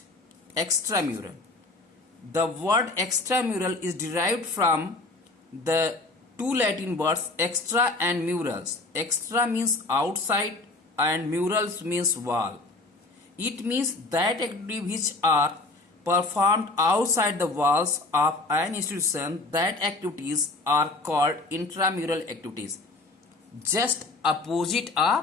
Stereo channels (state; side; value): quieter; right; 3.2 dB